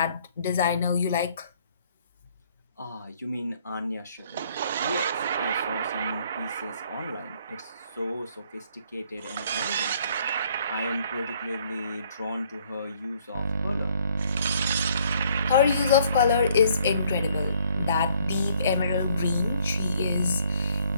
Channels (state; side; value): inverted; both; correlation -0.64